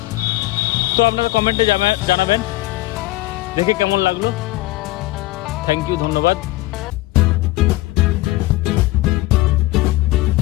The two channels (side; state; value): right; quieter; 18.7 dB